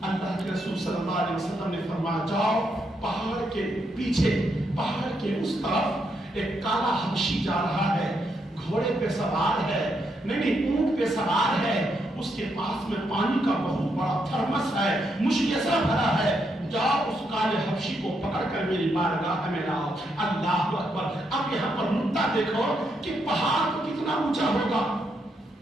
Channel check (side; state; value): both; normal; correlation 0.79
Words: اللہ کے رسول صلی اللہ علیہ وسلم نے فرمایا جاؤ پہاڑ کے پیچھے، پہاڑ کے اس طرف ایک کالا حبشی جا رہا ہے، گھوڑے پہ سوار ہے، نہیں اونٹ پہ سوار ہے، اس کے پاس میں پانی کا بہت بڑا تھرمس ہے، مشکیزہ بھرا ہے، جاؤ اس کالے حبشی کو پکڑ کر میری بارگاہ میں لاؤ۔ اللہ اکبر۔ اب یہاں پر نقطہ دیکھو کہ پہاڑ تو کتنا اونچا ہوگا،